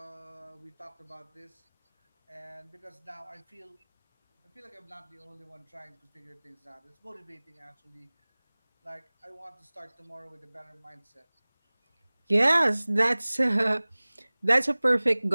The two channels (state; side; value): inverted; both; correlation -1.00